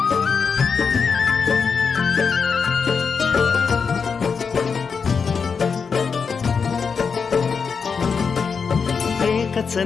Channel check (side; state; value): right; quieter; 5.7 dB